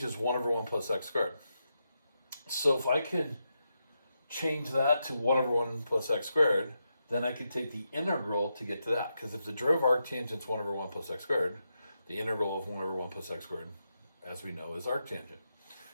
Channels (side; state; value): both; inverted; correlation -0.85